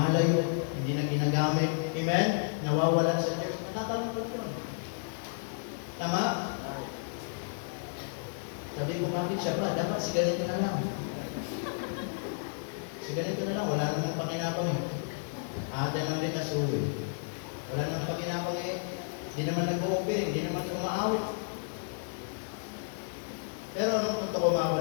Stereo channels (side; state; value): right; silent; digital silence